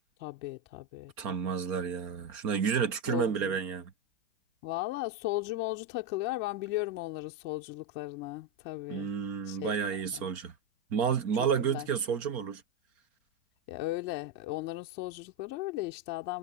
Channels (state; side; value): late; left; 4.4 ms